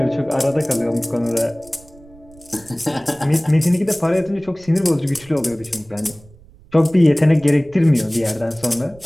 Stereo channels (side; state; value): right; noise; rumble, 24 dB below the sound